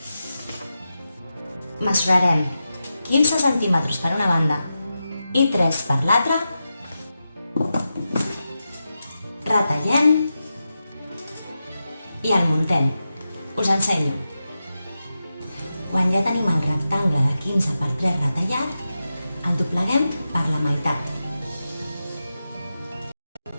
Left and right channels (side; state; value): both; inverted; correlation -0.90